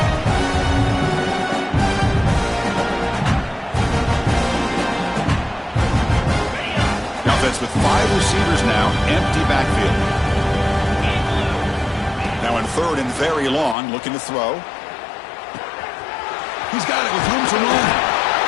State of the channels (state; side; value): drops out; right; at 13.8 s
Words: The offense with 5 receivers now. Empty backfield. Now in 3rd and very long, looking to throw. He's got it with room to run.